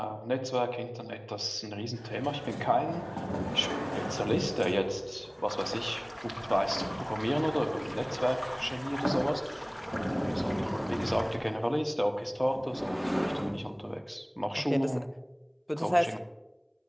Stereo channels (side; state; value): both; identical; correlation 1.00